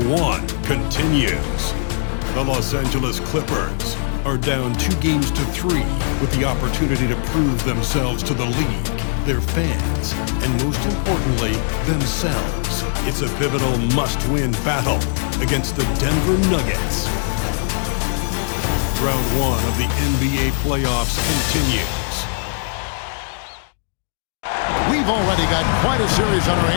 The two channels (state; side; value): silent; right; digital silence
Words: 1 continues. The Los Angeles Clippers are down 2-3 with the opportunity to prove themselves to the league, their fans, and most importantly, themselves. It's a pivotal must-win battle against the Denver Nuggets. Round 1 of the NBA playoffs continues. We've already got quite a series on our